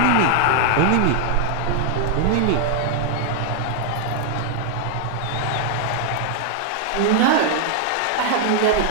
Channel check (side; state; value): both; different; correlation 0.00